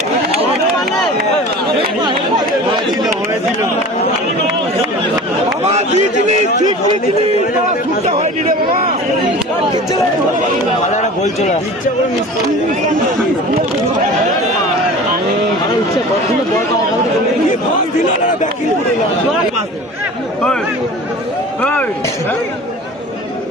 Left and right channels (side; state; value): both; normal; correlation 0.39